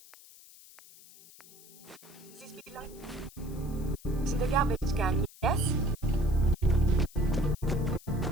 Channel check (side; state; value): left; noise; hiss, 21 dB below the sound